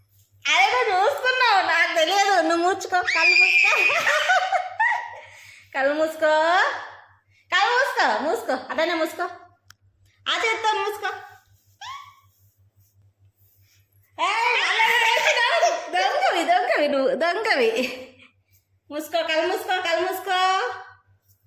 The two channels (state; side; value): identical; both; correlation 1.00